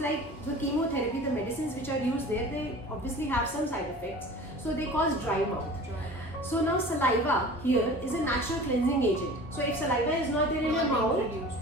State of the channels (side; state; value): both; normal; correlation 0.40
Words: they obviously have some side effects. So they cause dry mouth. Dry. So now saliva here is a natural cleansing agent. So if saliva is not there in your mouth, Reduced,